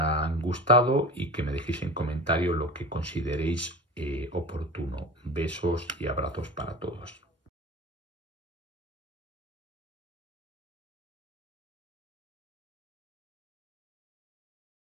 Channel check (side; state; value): both; normal; correlation 0.33